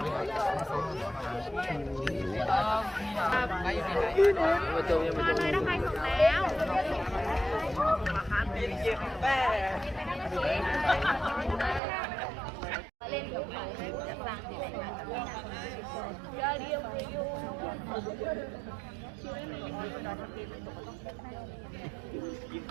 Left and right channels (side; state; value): left; drops out; at 11.8 s